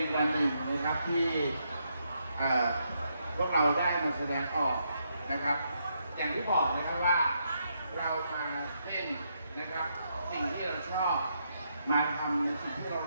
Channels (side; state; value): both; inverted; correlation -0.78